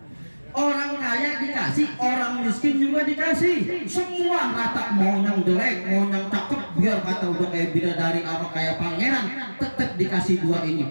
Orang kaya dikasih, orang miskin juga dikasih. Semua rata, mau yang jelek, mau yang cakep, biar kata udah kayak bidadari apa kayak pangeran, tetap dikasih dua ini.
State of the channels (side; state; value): both; inverted; correlation -1.00